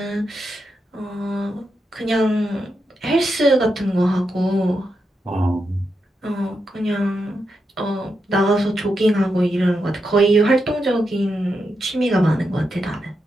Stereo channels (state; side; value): normal; both; correlation 0.85